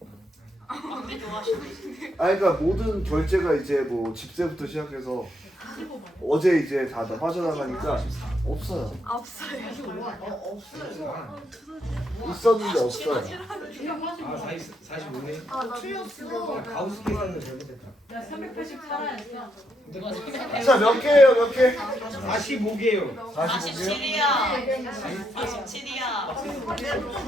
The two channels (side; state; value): both; normal; correlation 0.78